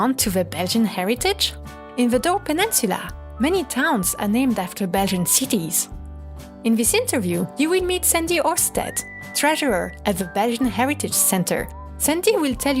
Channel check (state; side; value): identical; both; correlation 1.00